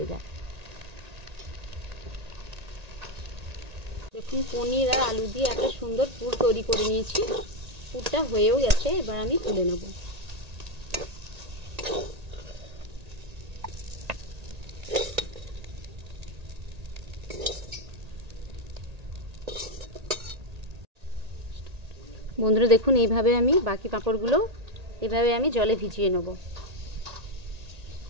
যায়। দেখুন, পনির আর আলু দিয়ে একটা সুন্দর পুর তৈরি করে নিয়েছি। পুরটা হয়েও গেছে, এবার আমি তুলে নেব। বন্ধুরা দেখুন, এইভাবে আমি বাকি পাঁপড়গুলো এভাবে আমি জলে ভিজিয়ে নেব।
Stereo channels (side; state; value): left; late; 1.8 ms